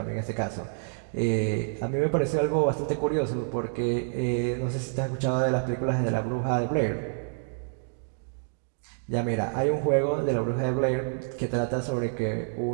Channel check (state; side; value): silent; left; digital silence